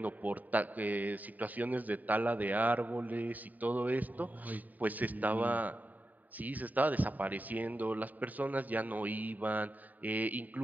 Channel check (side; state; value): left; late; 0.080 ms